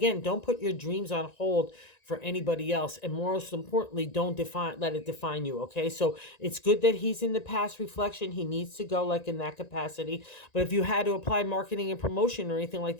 don't put your dreams on hold for anybody else. And most importantly, don't let it define you, okay? So it's good that he's in the past reflection. He needs to go in that capacity. But if you had to apply marketing and promotion or anything like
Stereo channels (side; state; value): right; late; 1.9 ms